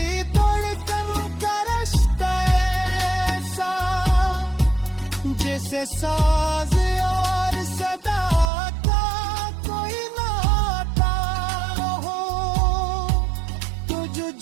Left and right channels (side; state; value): left; drops out; at 8.5 s